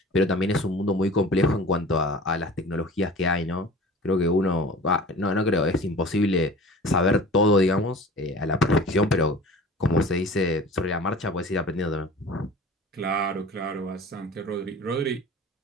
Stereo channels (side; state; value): both; normal; correlation 0.41